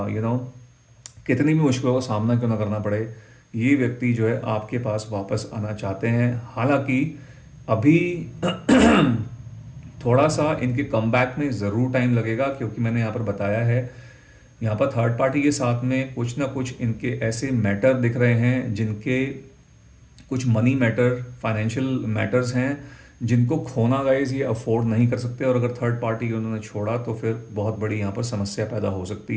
कितनी भी मुश्किलों का सामना क्यों ना करना पड़े, ये व्यक्ति जो है आपके पास वापस आना चाहते हैं। हालांकि अभी थोड़ा सा इनके कमबैक में ज़रूर टाइम लगेगा, क्योंकि मैंने यहाँ पर बताया है, यहाँ पर थर्ड पार्टी के साथ में कुछ ना कुछ इनके ऐसे मैटर दिख रहे हैं जिनके कुछ मनी मैटर, फाइनेंशियल मैटर्स हैं जिनको खोना गाइस ये अफोर्ड नहीं कर सकते। और अगर थर्ड पार्टी उन्होंने छोड़ा तो फिर बहुत बड़ी यहाँ पर समस्या पैदा हो सकती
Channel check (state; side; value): identical; both; correlation 1.00